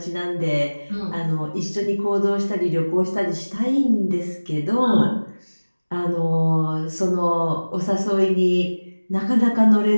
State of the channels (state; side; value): inverted; both; correlation -1.00